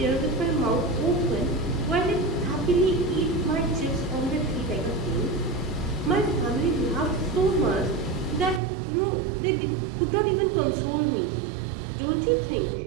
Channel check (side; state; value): left; drops out; at 8.6 s